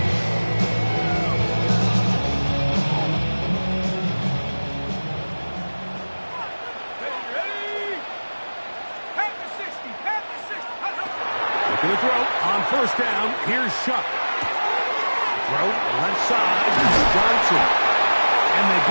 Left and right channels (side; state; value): both; inverted; correlation -1.00